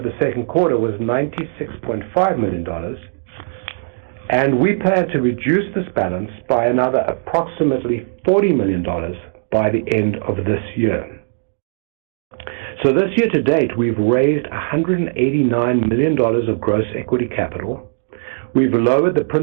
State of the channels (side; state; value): left; silent; digital silence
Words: the second quarter was $96.5 million, and we plan to reduce this balance by another approximately $40 million by the end of this year. So this year to date, we've raised $189 million of gross equity capital. We've lowered the